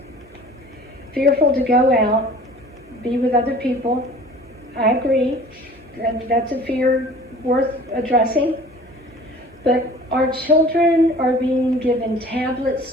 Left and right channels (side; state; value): both; normal; correlation 0.46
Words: fearful to go out, be with other people. I agree, that's a fear worth addressing. But our children are being given